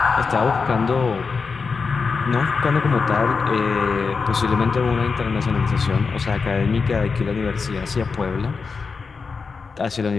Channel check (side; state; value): right; quieter; 5.0 dB